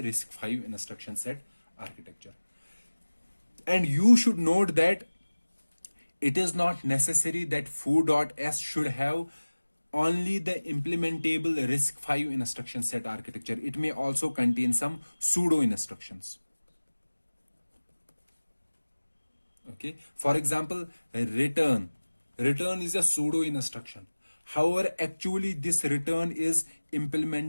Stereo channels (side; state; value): both; inverted; correlation -1.00